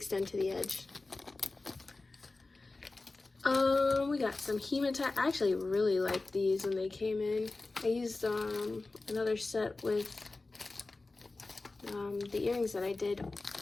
to the edge. We got some hematite. I actually really liked these when they came in. I used another set with the earrings that I did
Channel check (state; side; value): quieter; right; 3.4 dB